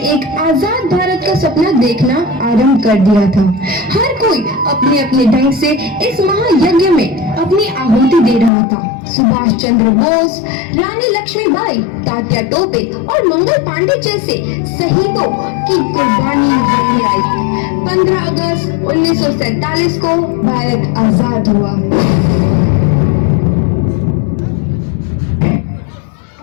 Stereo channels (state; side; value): drops out; right; at 8.5 s